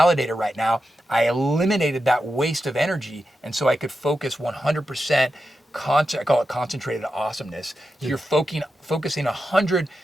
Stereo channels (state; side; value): normal; both; correlation 0.89